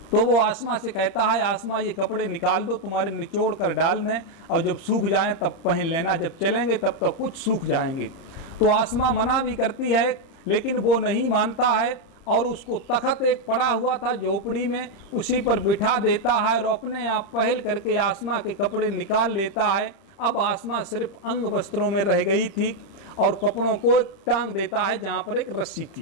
तो वो आसमा से कहता है आसमा ये कपड़े निकाल दो, तुम्हारे निचोड़ कर डाल दें और जब सूख जाएं तब पहन लेना, जब चलेंगे तब तक कुछ सूख जाएंगे। तो आसमा मना भी करती है लेकिन वो नहीं मानता है और उसको तख्त एक पड़ा हुआ था झोपड़ी में, उसी पर बिठा देता है और अपने आप पहल करके आसमा के कपड़े निकाल लेता है। अब आसमा सिर्फ अंग वस्त्रों में रह गई थी और कपड़ों को टांग देता है जहाँ पर एक रस्सी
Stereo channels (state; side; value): late; right; 30 ms